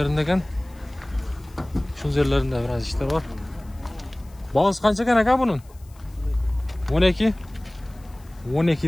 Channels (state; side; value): noise; left; hiss, 29 dB below the sound